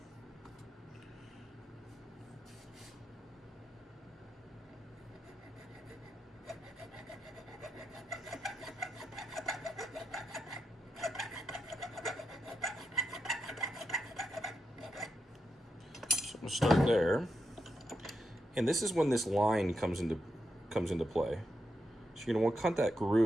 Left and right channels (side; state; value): both; normal; correlation 0.85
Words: I'm gonna start there, and this is when this line comes into play. So you're gonna want to cut that